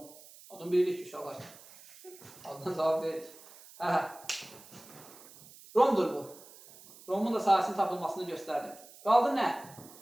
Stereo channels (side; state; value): right; noise; hiss, 20 dB below the sound